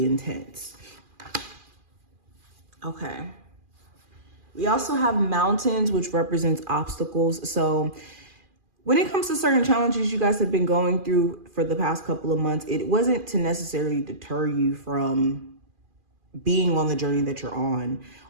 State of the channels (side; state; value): left; late; 2.4 ms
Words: intense. Okay. We also have mountains, which represents obstacles. So when it comes to certain challenges you guys have been going through for the past couple of months, it wasn't to necessarily deter you from being on the journey that you're on